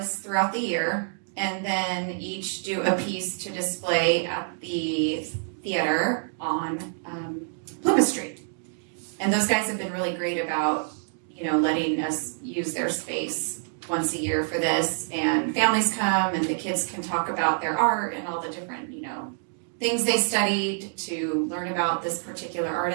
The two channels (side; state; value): left; silent; digital silence